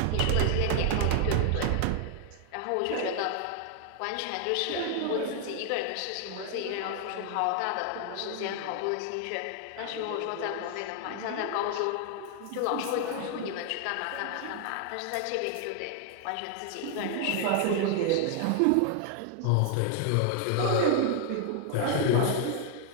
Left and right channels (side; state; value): both; different; correlation 0.00